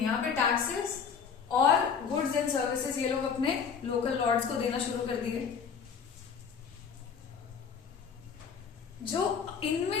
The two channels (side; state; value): right; quieter; 6.5 dB